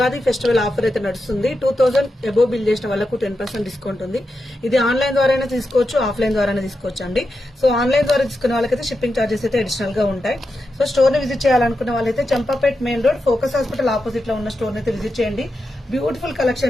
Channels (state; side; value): normal; both; correlation 0.88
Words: ఫెస్టివల్ ఆఫర్ అయితే నడుస్తుంది. 2000 అబోవ్ బిల్ చేసిన వాళ్ళకు 10% డిస్కౌంట్ ఉంది. ఇది ఆన్లైన్ ద్వారా తీసుకోవచ్చు, ఆఫ్లైన్ ద్వారా తీసుకోవచ్చు అండి. సో ఆన్లైన్ ద్వారా తీసుకున్న వాళ్ళకైతే షిప్పింగ్ చార్జెస్ అయితే అడిషనల్ గా ఉంటాయి. సో స్టోర్ ని విజిట్ చేయాలనుకున్న వాళ్ళైతే Champapet main road focus hospital opposite లో ఉన్న స్టోర్ అయితే విజిట్ చేయండి. బ్యూటిఫుల్